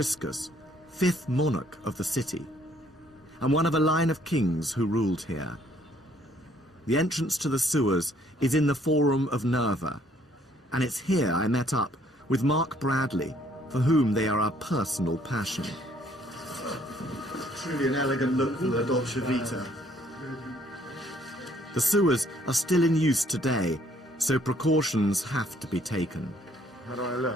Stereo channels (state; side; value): normal; both; correlation 0.64